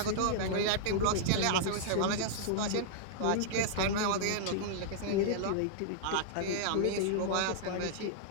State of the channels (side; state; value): both; different; correlation -0.01